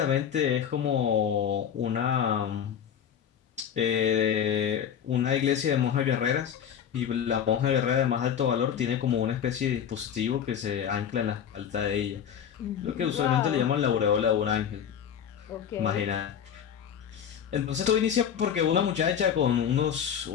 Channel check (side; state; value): right; quieter; 8.6 dB